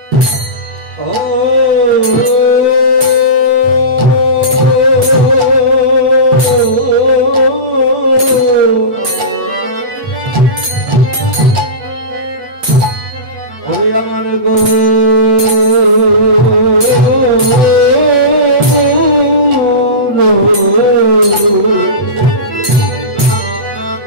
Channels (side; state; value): left; late; 8.4 ms